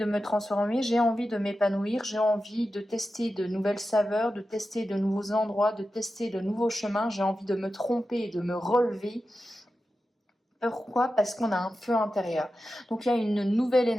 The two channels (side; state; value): both; normal; correlation 0.92